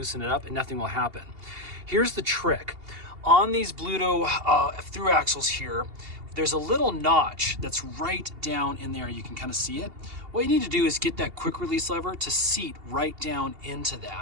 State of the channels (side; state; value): left; late; 2.8 ms